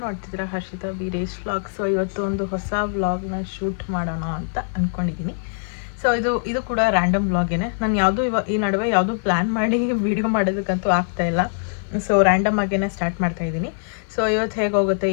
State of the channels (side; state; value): right; silent; 56 dB below the other